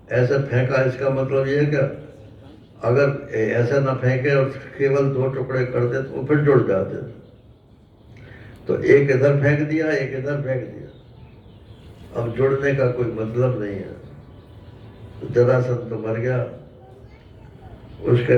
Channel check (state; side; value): identical; both; correlation 1.00